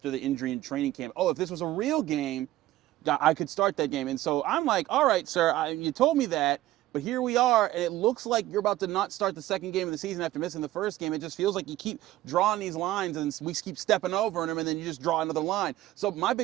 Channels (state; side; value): quieter; left; 15.3 dB